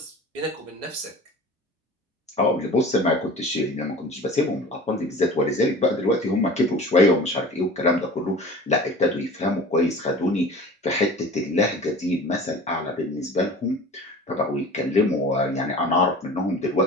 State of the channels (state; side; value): normal; both; correlation 0.40